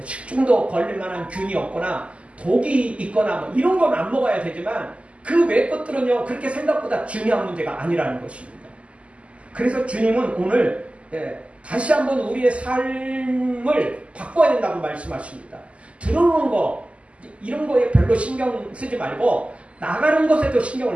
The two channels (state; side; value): late; left; 0.060 ms